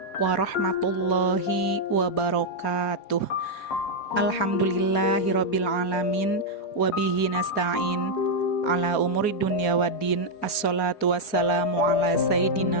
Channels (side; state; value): right; late; 4.4 ms